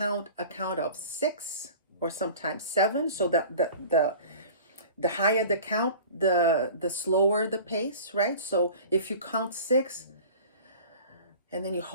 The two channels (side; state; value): both; inverted; correlation -0.41